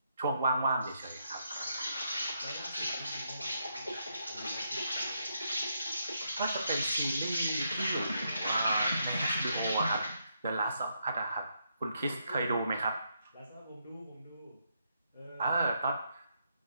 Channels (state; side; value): inverted; both; correlation -0.78